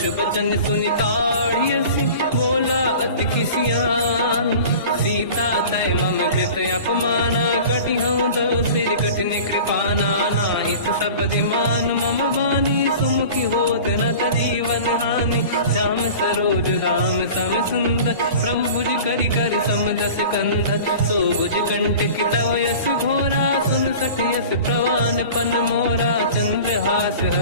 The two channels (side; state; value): both; inverted; correlation -0.40